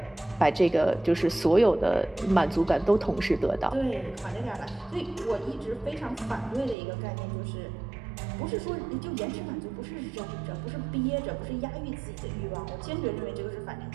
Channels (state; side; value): drops out; left; at 6.8 s